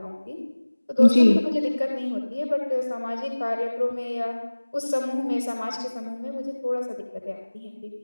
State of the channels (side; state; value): both; inverted; correlation -1.00